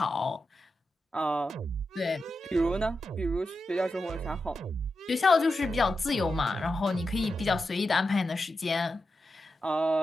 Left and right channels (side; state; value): both; normal; correlation 0.89